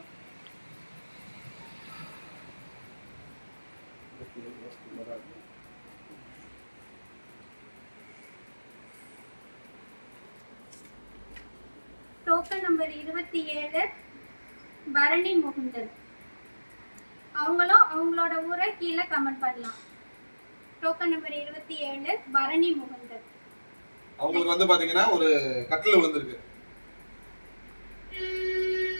Token number 27 Bharani Mukundan. அவங்களும் அவங்களோட ஊரை கீழே கமெண்ட் பண்ணலாம். Token number 27 Bharani Mukundan. அவங்களுக்கு வந்து பாத்தீங்கன்னா ஒரு கட்டில் விழுந்திருக்கு.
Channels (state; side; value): inverted; both; correlation -1.00